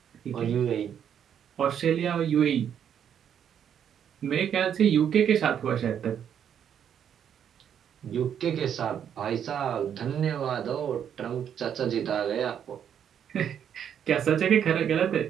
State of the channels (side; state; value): left; quieter; 8.8 dB